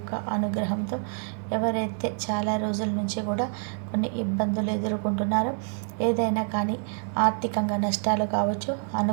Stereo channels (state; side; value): silent; left; 60 dB below the other